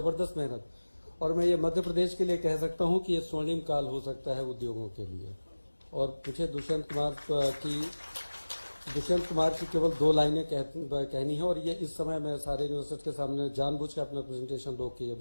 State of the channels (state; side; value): inverted; both; correlation -1.00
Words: मेहनत, और मैं ये मध्य प्रदेश के लिए कह सकता हूं कि ये स्वर्णिम काल हो सकता है उद्योगों के लिए। और मुझे दुष्यंत कुमार की केवल 2 लाइनें कहनी है, और ये इस समय मैं सारे इन्वेस्टर्स के सामने जानबूझ के अपना प्रेजेंटेशन रोक के ये